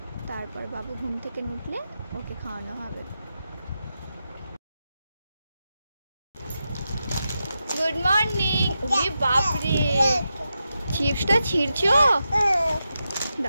তারপর বাবু ঘুম থেকে উঠলে ওকে খাওয়ানো হবে। Good morning. ওরে বাপ রে, চিপসটা ছিঁড়ছো?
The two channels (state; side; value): inverted; both; correlation -0.89